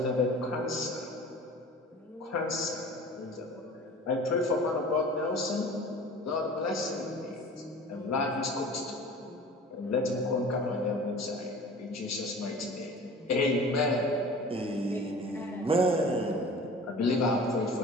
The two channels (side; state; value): both; normal; correlation 0.42